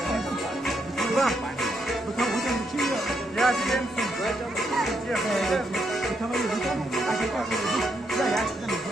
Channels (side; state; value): both; normal; correlation 0.78